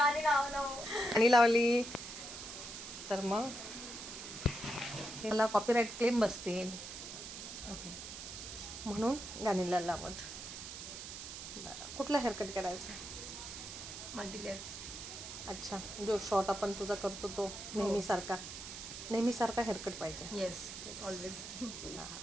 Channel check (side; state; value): right; noise; hiss, 9 dB below the sound